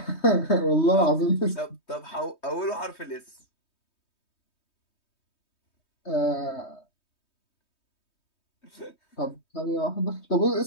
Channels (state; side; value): late; right; 3.2 ms